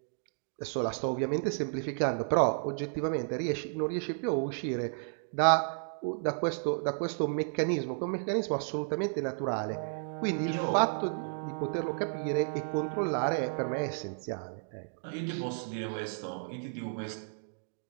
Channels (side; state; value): left; silent; digital silence